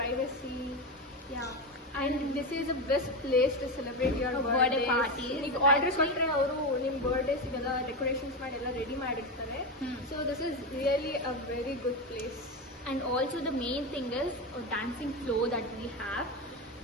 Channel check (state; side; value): normal; both; correlation 0.15